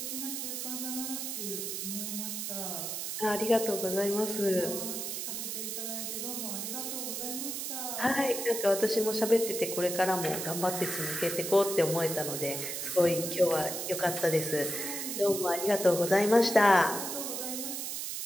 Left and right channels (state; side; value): noise; right; hiss, 4 dB below the sound